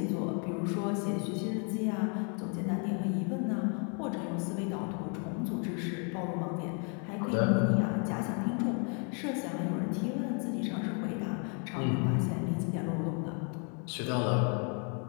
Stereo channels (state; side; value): quieter; right; 39.2 dB